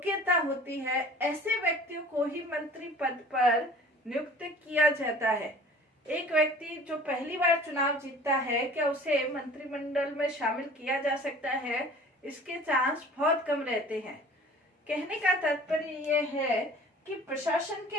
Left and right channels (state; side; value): normal; both; correlation 0.47